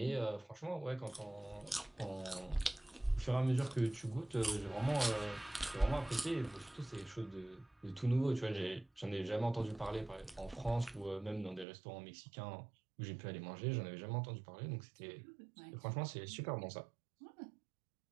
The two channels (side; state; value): left; drops out; at 11.7 s